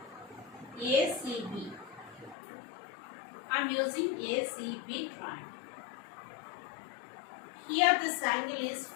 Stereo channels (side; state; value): right; drops out; at 2.4 s